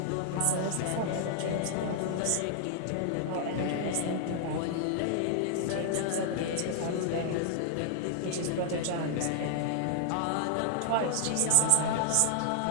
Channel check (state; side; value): different; both; correlation -0.01